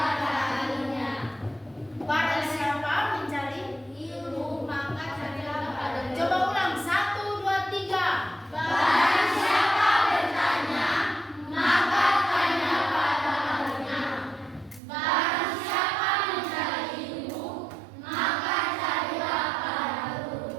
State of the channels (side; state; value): left; drops out; at 14.8 s